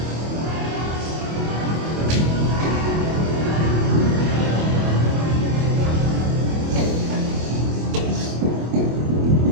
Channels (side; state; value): left; late; 25 ms